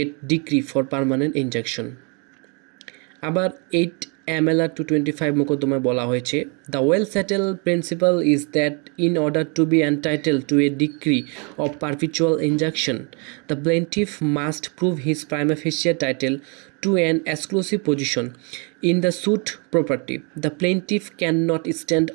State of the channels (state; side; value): quieter; left; 34.3 dB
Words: decree for permanent injunction. আবার 8 MLR 225 মোকদ্দমায় বলা হয়েছে, the well settled principle is that in order to be entitled to a decree of perpetual injunction, the plaintiff must prove his prima facie title to an exclusive position in the suit property. The plaintiff cannot stand